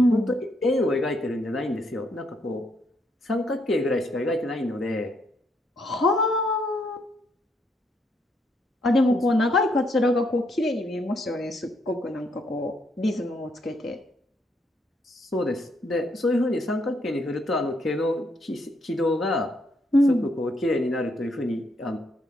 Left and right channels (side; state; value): both; normal; correlation 0.74